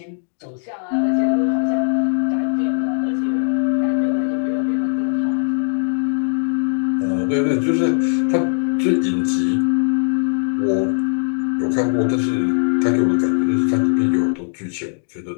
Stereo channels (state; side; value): silent; right; digital silence